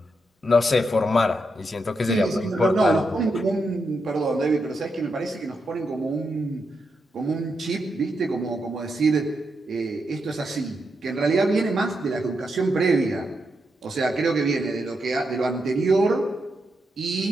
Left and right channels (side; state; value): both; normal; correlation 0.84